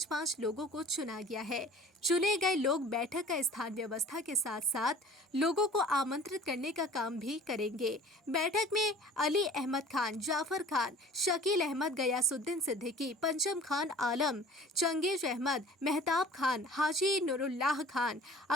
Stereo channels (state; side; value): normal; both; correlation 0.46